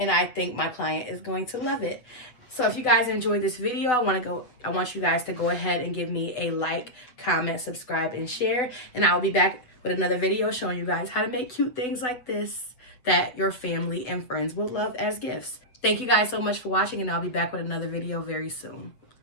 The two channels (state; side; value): late; right; 8.0 ms